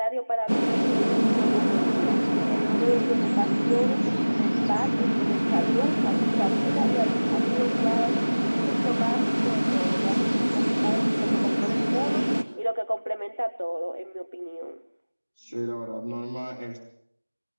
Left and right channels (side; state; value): both; inverted; correlation -1.00